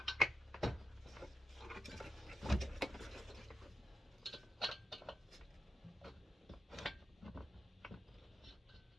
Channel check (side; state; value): both; normal; correlation 0.87